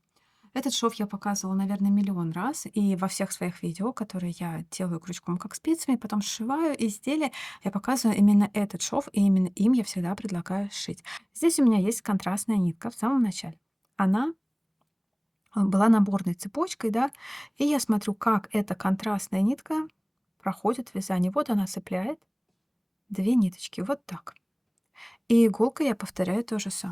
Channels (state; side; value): identical; both; correlation 1.00